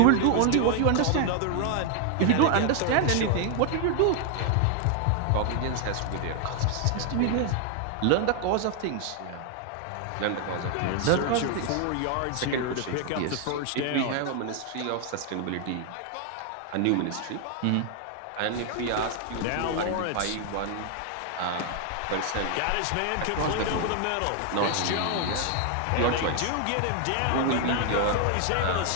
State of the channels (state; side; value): different; both; correlation 0.00